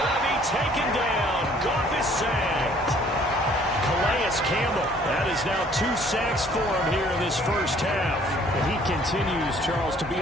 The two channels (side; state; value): both; normal; correlation 0.58